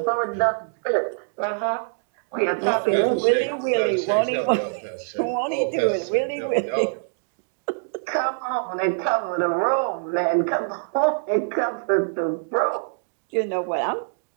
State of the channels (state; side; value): silent; left; digital silence